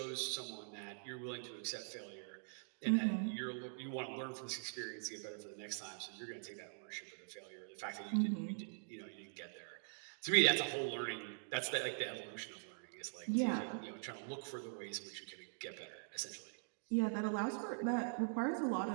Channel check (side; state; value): left; silent; digital silence